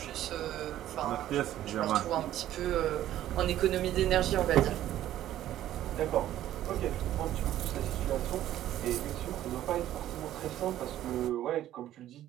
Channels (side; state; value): left; quieter; 12.8 dB